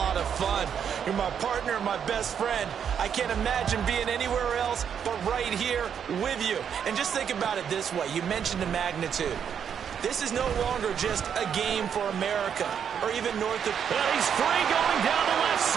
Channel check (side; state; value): left; quieter; 7.9 dB